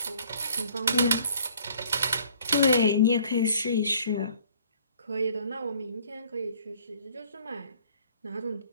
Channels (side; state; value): both; inverted; correlation -0.57